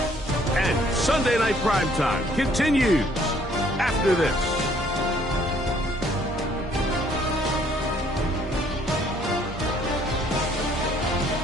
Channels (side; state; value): both; normal; correlation 0.62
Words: And Sunday Night Primetime continues after this.